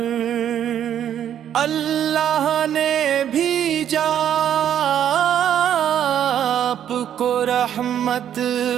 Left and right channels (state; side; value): quieter; left; 10.0 dB